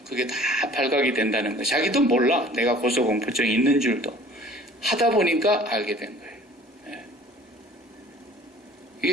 그게 다 발각이 된다는 거. 자기도 몰라. 내가 고소공포증이 있는 줄도. 하다 보니까 알게 된 거예요.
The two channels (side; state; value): both; normal; correlation 0.49